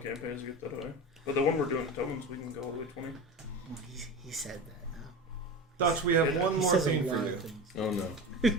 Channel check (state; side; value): normal; both; correlation 0.28